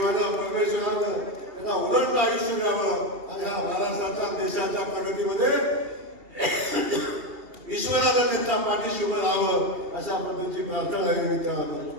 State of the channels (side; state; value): left; late; 2.8 ms